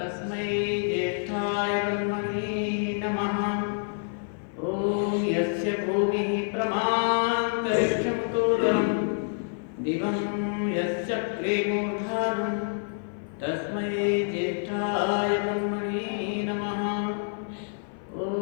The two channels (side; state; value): right; silent; 55 dB below the other